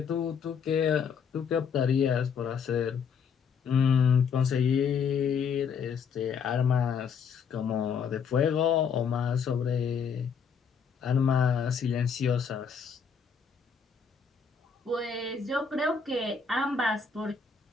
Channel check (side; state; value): right; quieter; 6.4 dB